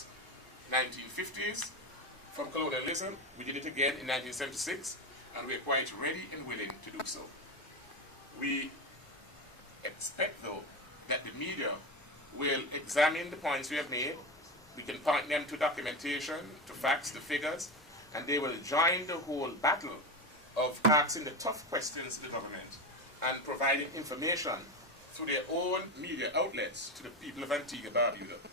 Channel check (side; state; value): both; normal; correlation 0.18